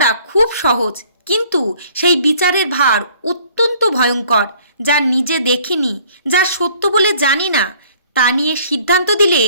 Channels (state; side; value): inverted; both; correlation -0.57